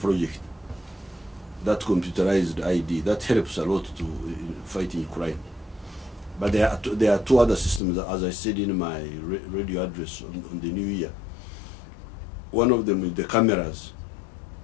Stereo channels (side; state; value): right; drops out; at 7.8 s